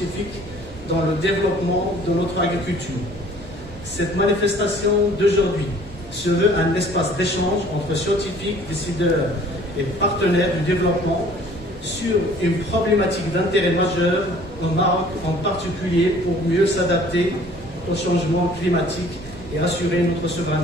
dans le développement de notre agriculture. Cette manifestation d'aujourd'hui se veut un espace d'échange entre scientifiques, décideurs et partenaires du développement sur une problématique d'intérêt majeur au Maroc en particulier pour mieux s'adapter au changement climatique et assurer notre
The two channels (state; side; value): normal; both; correlation 0.53